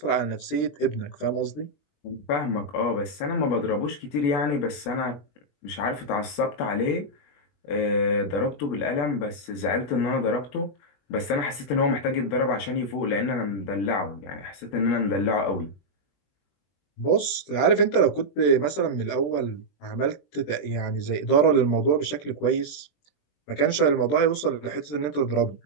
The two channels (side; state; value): right; late; 21 ms